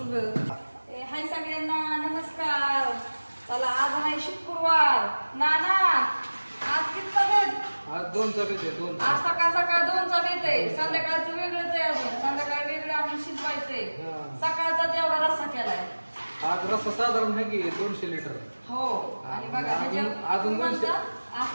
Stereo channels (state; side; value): inverted; both; correlation -1.00